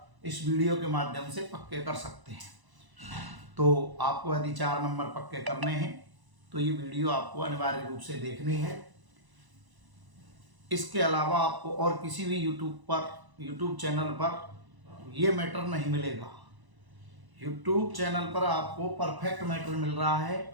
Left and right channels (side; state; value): left; late; 1.0 ms